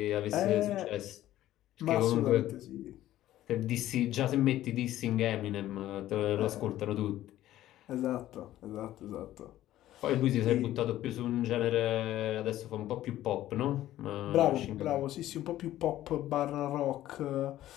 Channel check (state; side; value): quieter; right; 13.9 dB